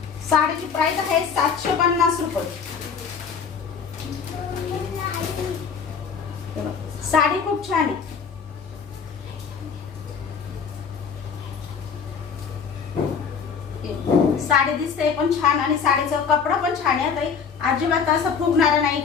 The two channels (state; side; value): quieter; right; 6.3 dB